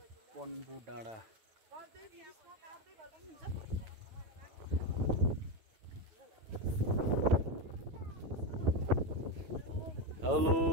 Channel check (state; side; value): late; left; 9.1 ms